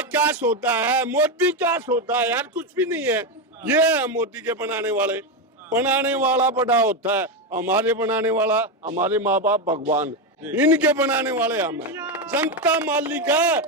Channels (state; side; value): normal; both; correlation 0.10